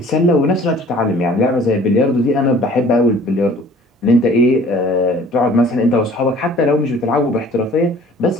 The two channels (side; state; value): both; normal; correlation 0.51